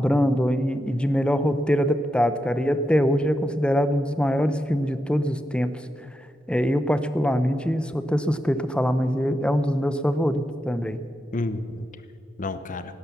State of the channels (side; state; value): both; normal; correlation 0.86